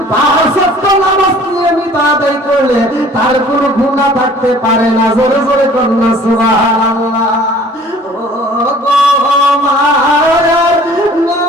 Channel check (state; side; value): normal; both; correlation 0.51